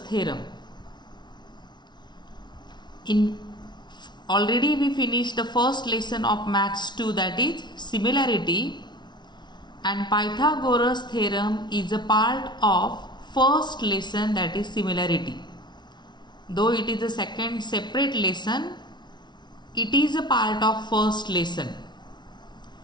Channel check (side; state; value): right; late; 0.21 ms